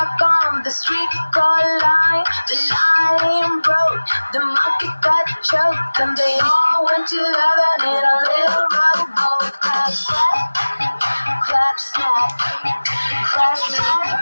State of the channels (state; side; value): inverted; both; correlation -1.00